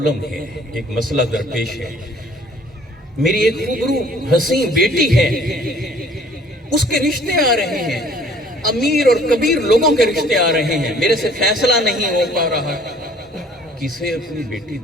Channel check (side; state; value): both; normal; correlation 0.55